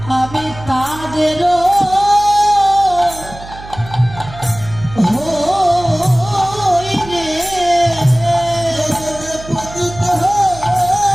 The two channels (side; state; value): right; noise; hum, 16 dB below the sound